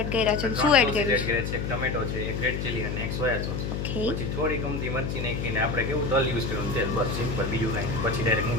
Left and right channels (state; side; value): noise; left; hum, 3 dB below the sound